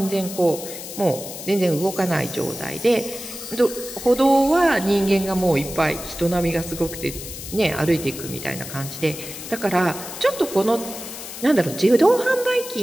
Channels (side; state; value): left; noise; hiss, 10 dB below the sound